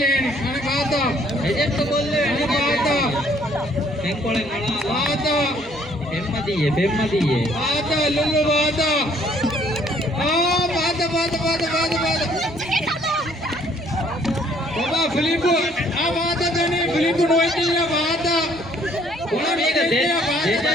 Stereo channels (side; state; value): both; normal; correlation 0.62